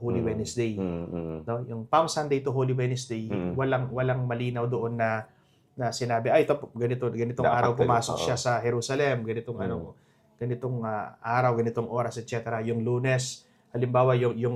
Wednesday. No, yung Palm Sunday to Holy Wednesday, walang malinaw doon na sinabi, ay ito ganitong Dapat araw ganun, pumasok siya sa Jerusalem, ganitong araw, ganitong oras, etc. Yung Lunes, halimbawa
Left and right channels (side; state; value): both; identical; correlation 1.00